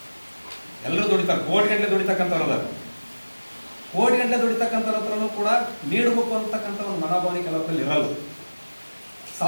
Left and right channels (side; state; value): both; inverted; correlation -1.00